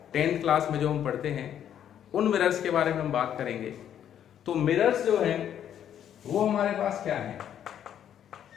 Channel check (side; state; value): right; quieter; 9.9 dB